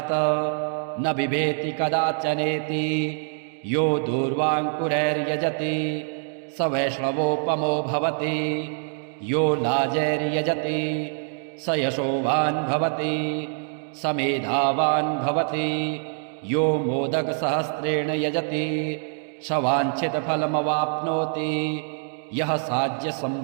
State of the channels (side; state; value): left; silent; 59 dB below the other